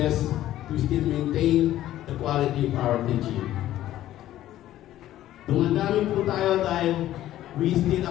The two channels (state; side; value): quieter; right; 13.5 dB